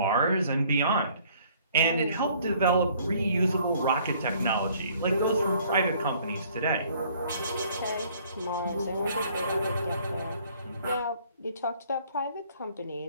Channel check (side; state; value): both; inverted; correlation -0.58